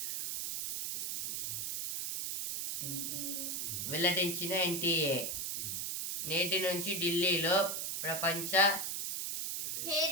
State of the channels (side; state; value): right; noise; hiss, 2 dB below the sound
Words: వెల్లడించిన ఎన్టీఏ నేటి నుంచి ఢిల్లీలో ప్రపంచ